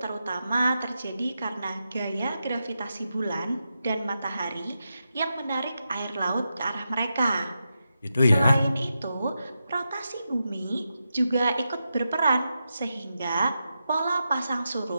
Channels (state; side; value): inverted; both; correlation -0.88